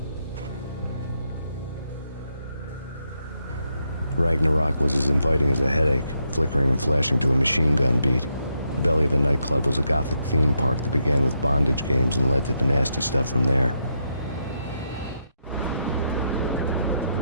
Ragnarock was as inviting as a headache, flickering and flashing to a machine gun beat. The belly of a nightclub was a gothic theme park that began with bondage games and led to the nasty stuff from there.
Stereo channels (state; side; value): inverted; both; correlation -0.81